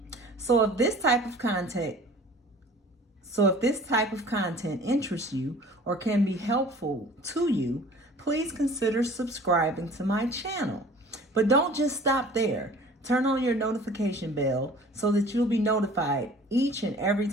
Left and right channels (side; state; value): both; normal; correlation 0.46